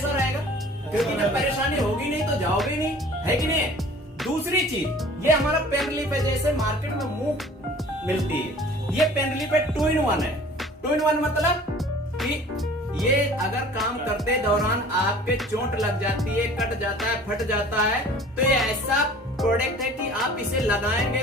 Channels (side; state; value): both; normal; correlation 0.47